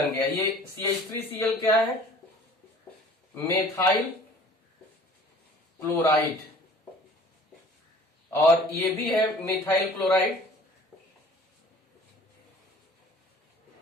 गया। ये CH3Cl क्या है? मेथाइल क्लोराइड, और ये भी है मिथाइल क्लोराइड।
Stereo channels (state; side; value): normal; both; correlation 0.49